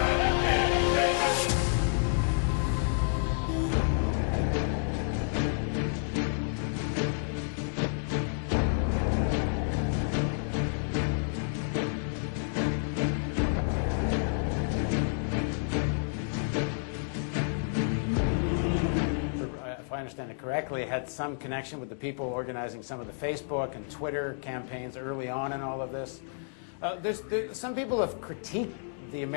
If I understand it correctly, had some connection with the people organizing some of the Facebook and Twitter campaigns early on in all of this. Some people have critiqued the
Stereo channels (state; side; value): silent; right; digital silence